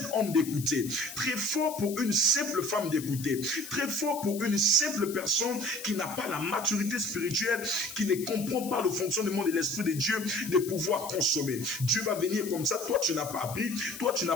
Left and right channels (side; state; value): left; noise; hiss, 12 dB below the sound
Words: homme d'écouter, très fort pour une simple femme d'écouter, très fort pour une simple personne qui n'a pas la maturité spirituelle, qui ne comprend pas le fonctionnement de l'Esprit de Dieu, de pouvoir consommer. Dieu va venir comme ça, toi tu n'as pas appris, toi tu n'as